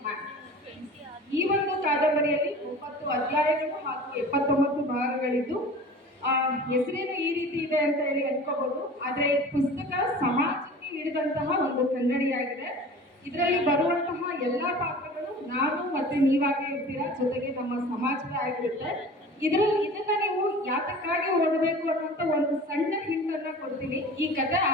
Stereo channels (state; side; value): normal; both; correlation 0.40